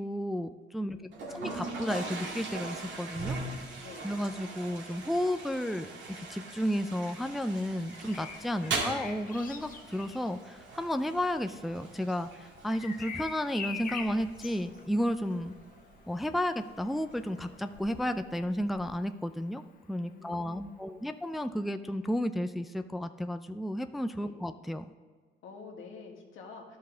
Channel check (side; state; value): both; normal; correlation 0.86